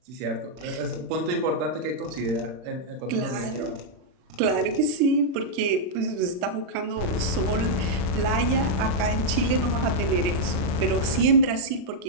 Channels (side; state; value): left; late; 40 ms